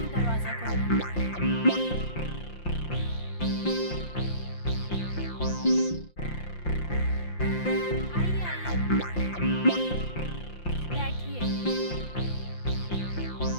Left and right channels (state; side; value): late; right; 5.7 ms